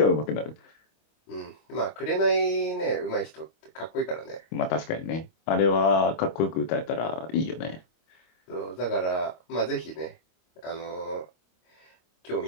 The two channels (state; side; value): late; right; 25 ms